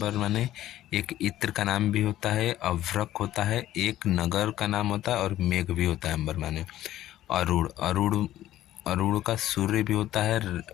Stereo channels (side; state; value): right; quieter; 13.7 dB